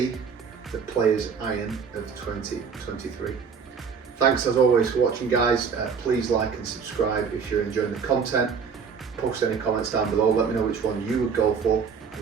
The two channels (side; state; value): left; quieter; 6.1 dB